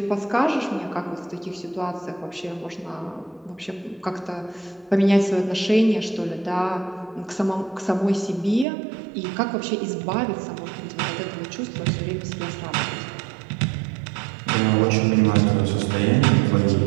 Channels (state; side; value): drops out; left; at 8.7 s